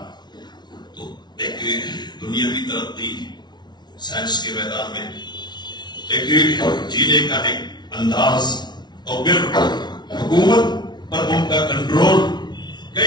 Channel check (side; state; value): right; late; 0.20 ms